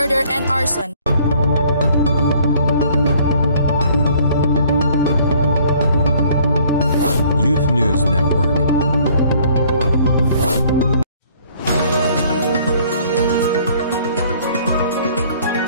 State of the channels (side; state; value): both; inverted; correlation -0.58